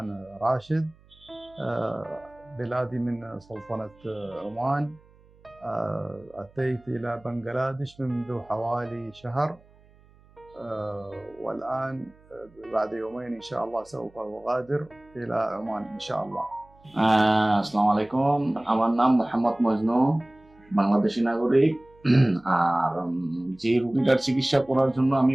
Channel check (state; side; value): noise; right; hum, 28 dB below the sound